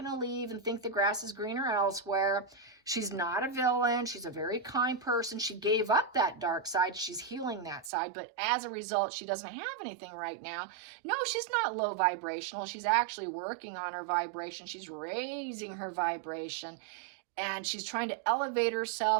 to leave and think the grass is greener elsewhere. She's not a villain. She's a very kind person. She gave up that dark side. She's healing that side. But as a result, she doesn't have anything right now. No, she's not low vibrational. She's actually working on her vibration. She's raising her vibration. And she's trying to elevate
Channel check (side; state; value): left; drops out; at 7.9 s